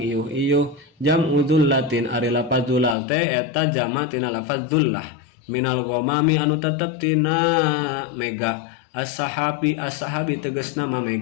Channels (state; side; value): drops out; right; at 3.0 s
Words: jam'u dhullatin ari lafaz dhulal teh eta jama tina lafaz dhullah minal ghamami anu tetep tina mega as-sahabi tegasna mah